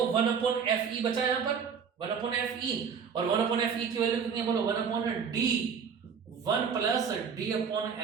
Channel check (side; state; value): left; quieter; 6.6 dB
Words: 1 अपॉन एफ ई बचा यहां पर, 1 अपॉन एफ ई, और 1 अपॉन एफ ई की वैल्यू कितनी है बोलो, 1 upon D, 1 plus D upon